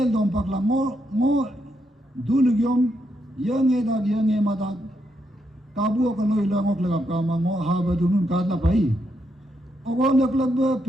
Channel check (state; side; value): normal; both; correlation 0.79